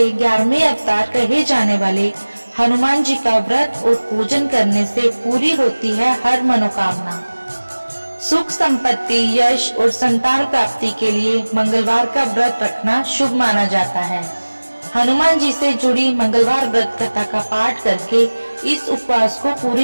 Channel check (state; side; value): inverted; both; correlation -1.00